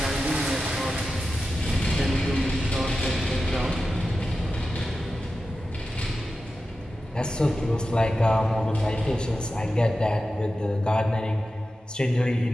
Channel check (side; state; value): both; normal; correlation 0.93